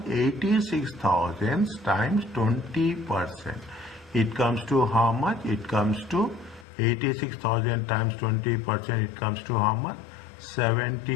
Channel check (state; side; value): drops out; right; at 6.7 s